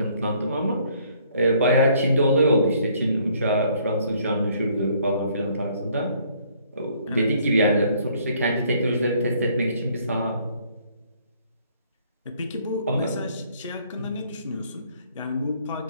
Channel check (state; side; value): inverted; both; correlation -0.63